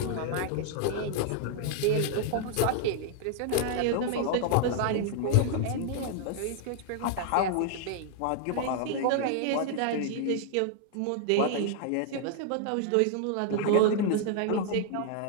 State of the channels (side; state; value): both; different; correlation -0.01